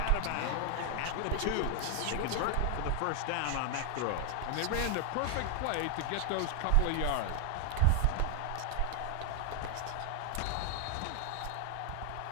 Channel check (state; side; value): different; both; correlation 0.00